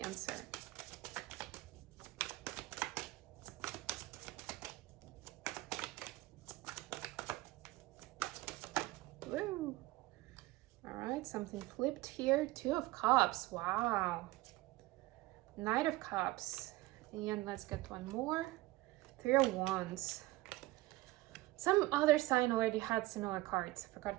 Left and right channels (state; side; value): quieter; left; 19.4 dB